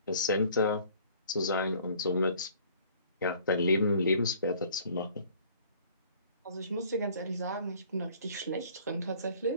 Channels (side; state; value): both; inverted; correlation -0.55